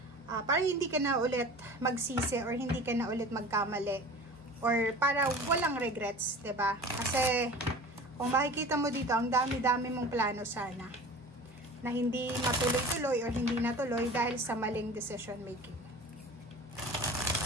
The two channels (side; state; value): both; normal; correlation 0.39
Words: para hindi ka na ulit magsisi or hindi ka na ulit magkamali or para walang regrets, 'di ba? Kasi kung makikita mo dito, ang dami-dami mong plano sana na hindi matuloy-tuloy or hindi natuloy dahil sa maling decision making.